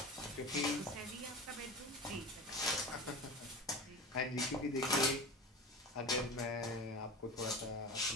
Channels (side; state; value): both; normal; correlation 0.31